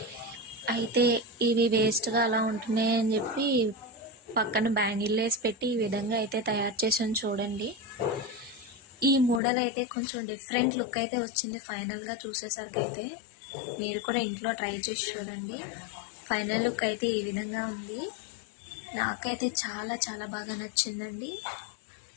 అయితే ఇవి వేస్ట్గా అలా ఉంటున్నాయి అని చెప్పి పక్కన బ్యాంగిల్ వేసి పెట్టి ఈ విధంగా అయితే తయారు చేసాను చూడండి. ఈ మోడల్ అయితే కొంచెం డిఫరెంట్ లుక్ అయితే వచ్చింది. ఫైనల్గా చూసేసరికి అయితే మీరు కూడా ఇంట్లో ట్రై చేసి చూడండి. ఫైనల్ లుక్ అయితే ఈ విధంగా ఉంది. నాకైతే చాలా చాలా బాగా నచ్చిందండి.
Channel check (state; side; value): drops out; right; at 9.4 s